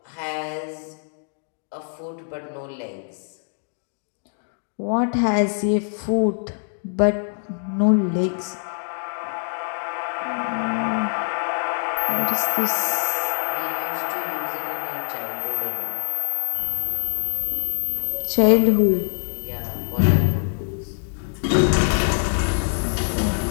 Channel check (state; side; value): silent; right; 63 dB below the other